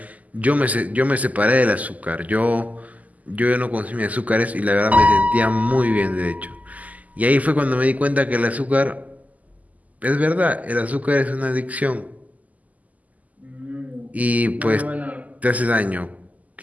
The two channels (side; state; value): left; late; 0.076 ms